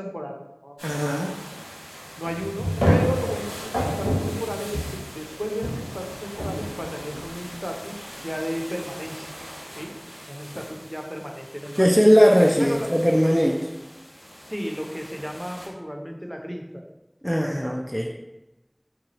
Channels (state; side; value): identical; both; correlation 1.00